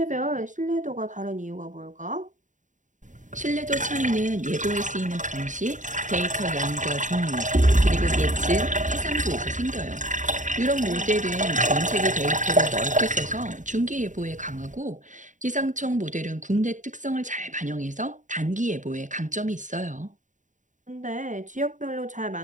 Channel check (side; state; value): left; late; 0.36 ms